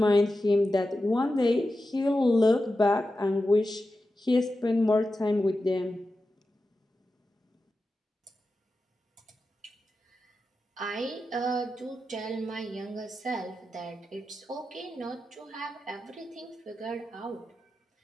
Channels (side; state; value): both; normal; correlation 0.91